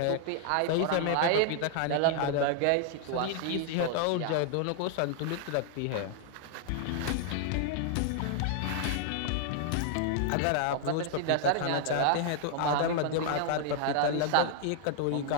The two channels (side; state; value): both; different; correlation 0.00